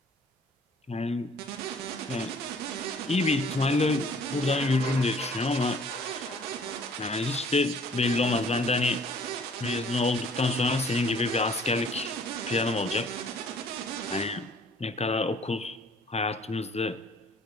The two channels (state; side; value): normal; both; correlation 0.55